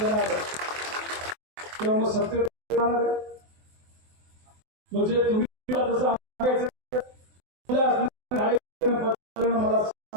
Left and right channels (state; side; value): late; left; 24 ms